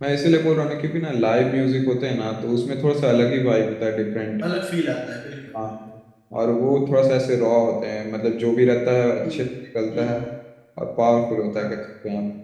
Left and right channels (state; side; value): identical; both; correlation 1.00